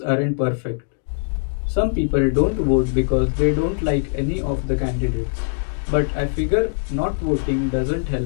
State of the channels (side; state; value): right; silent; digital silence